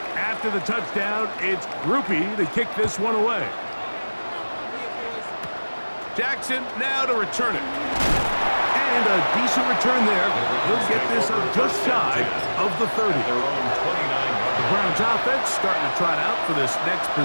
After the touchdown, it's Groupie to kick this one away. Jackson now to return it. And a decent return there. He'll get this up just shy of the 30. The Browns offense starting to trot out for this next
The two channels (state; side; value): inverted; both; correlation -1.00